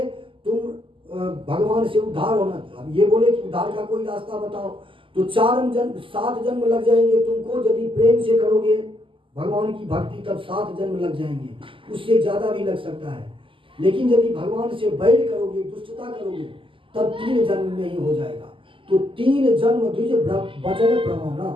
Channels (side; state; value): left; late; 0.25 ms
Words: तुम भगवान से उद्धार होना, अब ये बोले कि उद्धार का कोई रास्ता बताओ, तो 7 जन्म लग जाएंगे तुमको। यदि प्रेम से करोगे भगवान की भक्ति तब 7 जन्म लग जाएंगे, उससे ज्यादा भी लग सकता है। लेकिन यदि भगवान से बैर करोगे, दुष्टता करोगे, तब 3 जन्म में ही हो जाएगा। तो 3 जन्म द्विज वचन प्रमाणा,